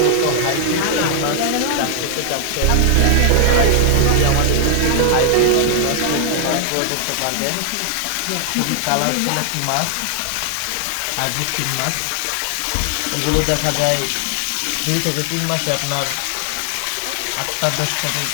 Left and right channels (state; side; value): different; both; correlation 0.00